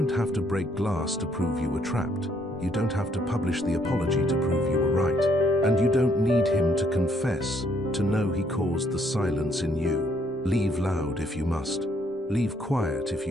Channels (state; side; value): normal; both; correlation 0.69